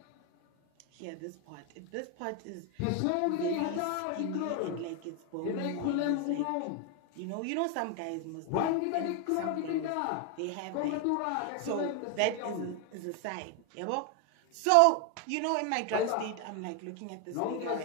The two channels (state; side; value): different; both; correlation 0.01